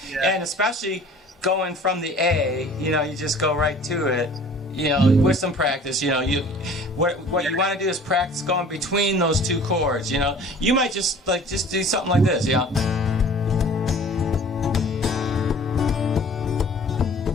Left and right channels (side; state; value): both; normal; correlation 0.47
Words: Yeah. And especially going from the A, you just go right to it. With some practice, what you want to do is practice going between those two chords. You might just do something like this, or